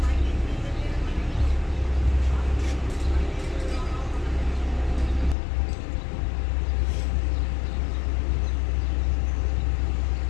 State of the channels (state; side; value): drops out; right; at 5.4 s